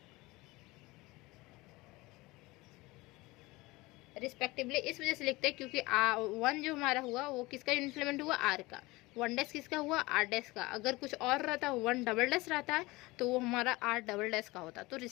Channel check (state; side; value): quieter; right; 21.6 dB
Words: रिस्पेक्टिवली इस वजह से लिखते हैं क्योंकि 1 जो हमारा हुआ वो किसका यूनिट एलिमेंट हुआ, आर का, 1 डैश किसका हुआ, आर डैश का। अगर कुछ और रहता 1 डबल डैश रहता है तो वो हमारा आर डबल डैश का होता। तो